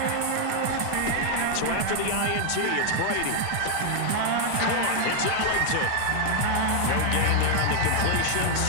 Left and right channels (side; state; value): both; different; correlation 0.00